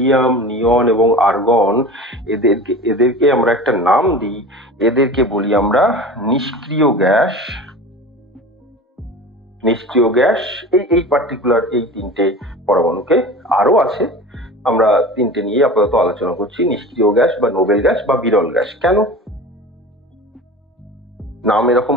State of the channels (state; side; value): normal; both; correlation 0.35